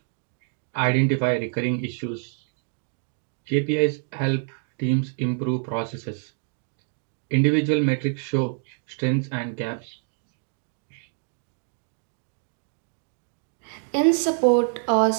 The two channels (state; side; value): silent; left; digital silence